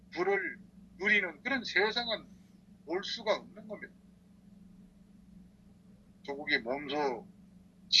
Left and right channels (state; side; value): identical; both; correlation 1.00